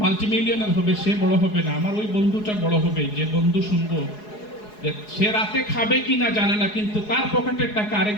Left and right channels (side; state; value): right; late; 4.8 ms